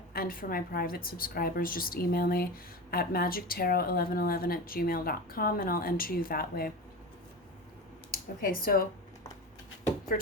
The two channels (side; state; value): both; normal; correlation 0.26